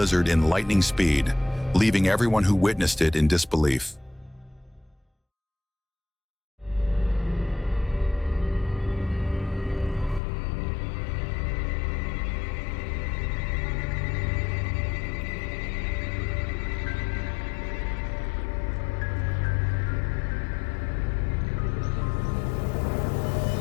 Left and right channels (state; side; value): drops out; right; at 10.2 s